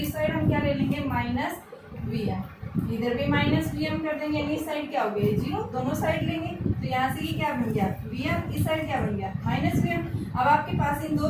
साइड हम क्या ले लेंगे, माइनस vm, इधर भी माइनस vm कर देंगे, यानी इस साइड क्या हो गया, जीरो, दोनों साइड लेंगे। तो यहाँ से ये क्या बन गया, vm, इस साइड क्या बन गया, माइनस vm। अब आपके पास इन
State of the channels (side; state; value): both; identical; correlation 1.00